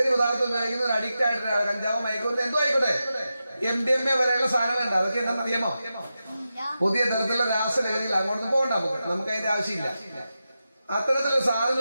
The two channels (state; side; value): inverted; both; correlation -0.91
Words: പദാർത്ഥം ഉപയോഗിക്കുന്ന ഒരു അഡിക്റ്റ് ആയിട്ട് കഞ്ചാവ് മയക്കുമരുന്ന് എന്തോ ആയിക്കോട്ടെ, MDMA വരെയുള്ള സാധനങ്ങളുണ്ട്. അതൊക്കെ എന്താണെന്ന് അറിയാമോ? പുതിയ തരത്തിലുള്ള രാസലഹരിയിൽ അങ്ങോട്ട് പോകണ്ട. നമുക്ക് അതിന്റെ ആവശ്യമില്ല. അത്തരത്തിലുള്ള സാധനം